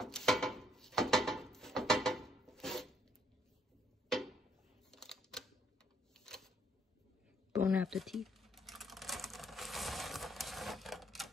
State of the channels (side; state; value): both; normal; correlation 0.70